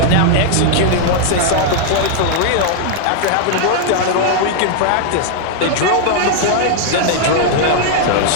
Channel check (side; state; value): both; different; correlation -0.01